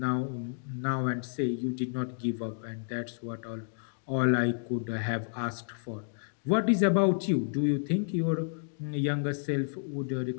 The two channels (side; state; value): right; silent; digital silence